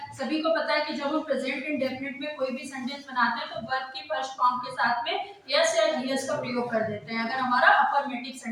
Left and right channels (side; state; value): both; identical; correlation 1.00